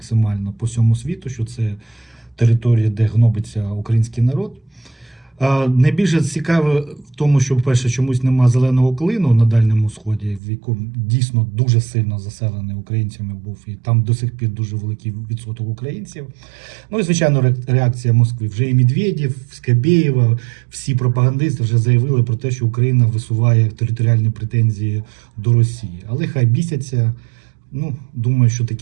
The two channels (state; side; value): drops out; left; at 10.4 s